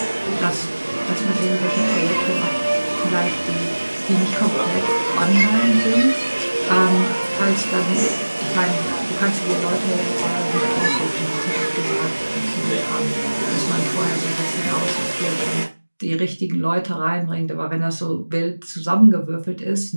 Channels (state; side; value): inverted; both; correlation -1.00